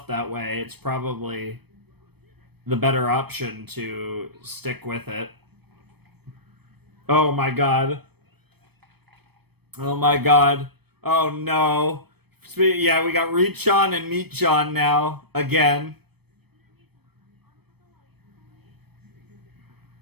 that way, it's probably the better option to stick with it. Oh my god. Oh my god. Oh no. Yeah, we got Reach-on and Meat-on now. Again.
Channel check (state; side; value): late; left; 0.97 ms